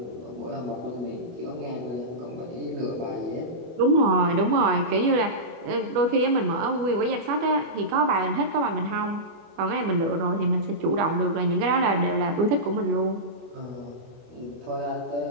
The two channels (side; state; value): left; late; 25 ms